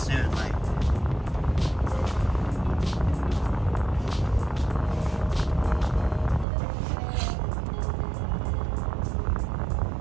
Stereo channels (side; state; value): left; drops out; at 6.5 s